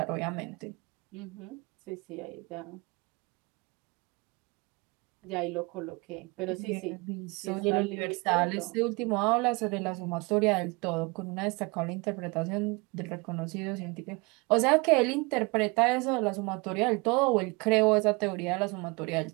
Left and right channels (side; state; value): left; quieter; 27.2 dB